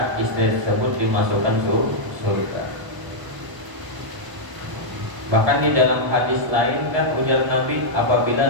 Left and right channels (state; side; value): late; left; 1.0 ms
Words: istri tersebut dimasukkan surga. Bahkan di dalam hadis lain kan ujar Nabi, apabila